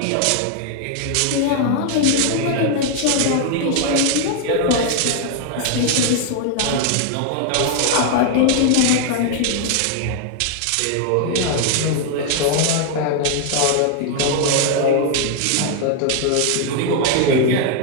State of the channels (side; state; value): both; different; correlation 0.00